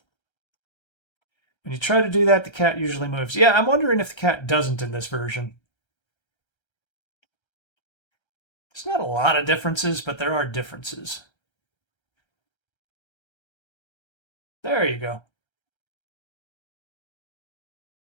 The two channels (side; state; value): right; late; 1.3 ms